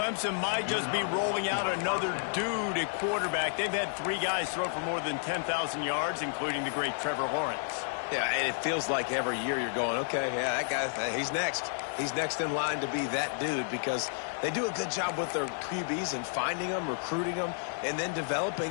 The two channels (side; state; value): right; silent; digital silence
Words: might just be rolling out another dude at quarterback. They've had 3 guys throw for more than 10,000 yards, including the great Trevor Lawrence. Yeah, and it feels like every year you're going, okay, yeah, that guy, he's next. He's next in line to be that dude because they do a good job with their QBs and finding them, recruiting them, and then